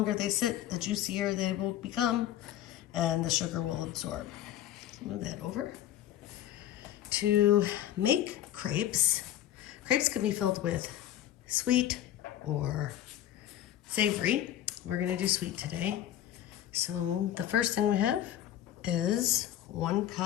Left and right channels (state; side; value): quieter; right; 12.1 dB